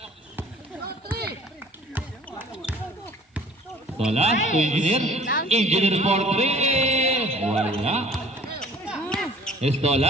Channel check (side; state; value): both; normal; correlation 0.50